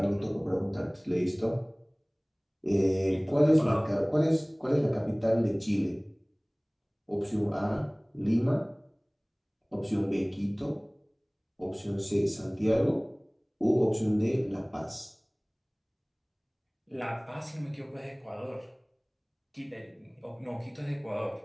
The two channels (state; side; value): identical; both; correlation 1.00